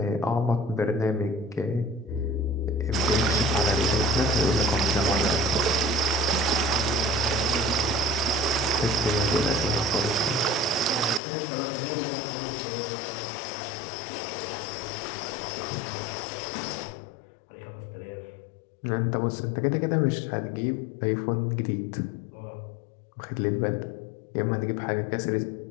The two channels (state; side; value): drops out; right; at 11.2 s